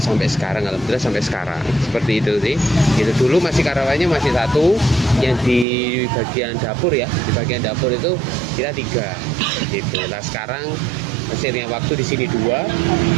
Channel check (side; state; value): left; drops out; at 5.7 s